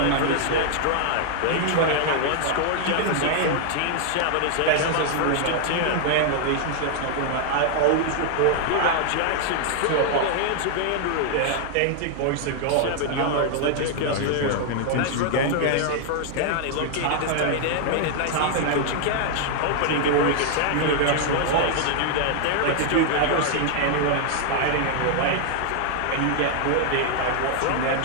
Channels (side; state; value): both; different; correlation 0.00